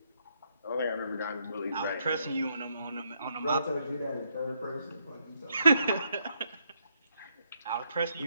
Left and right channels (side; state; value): both; inverted; correlation -0.75